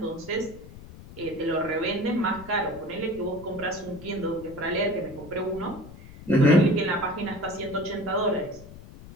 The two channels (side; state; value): left; noise; rumble, 17 dB below the sound